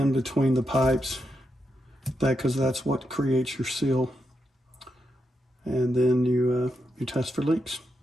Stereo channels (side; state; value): both; normal; correlation 0.84